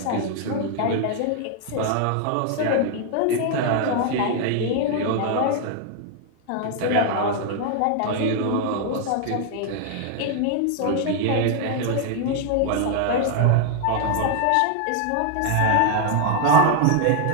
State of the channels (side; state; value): both; different; correlation 0.00